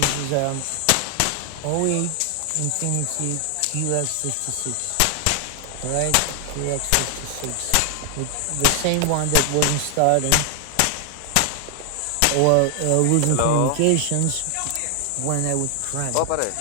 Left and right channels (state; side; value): different; both; correlation 0.00